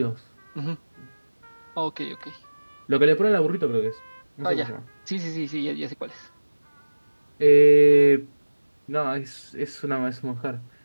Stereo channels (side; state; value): both; inverted; correlation -1.00